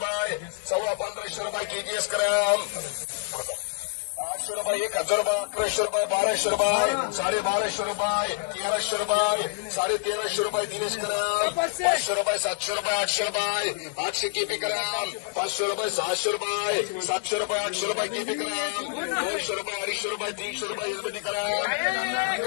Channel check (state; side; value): silent; right; 60 dB below the other